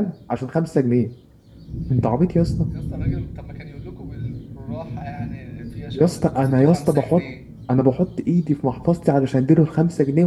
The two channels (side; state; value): both; identical; correlation 1.00